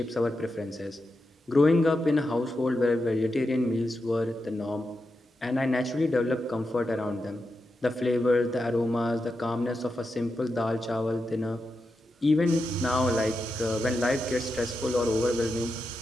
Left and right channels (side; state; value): both; normal; correlation 0.88